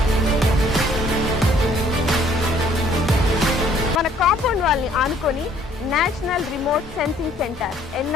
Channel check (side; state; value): both; normal; correlation 0.60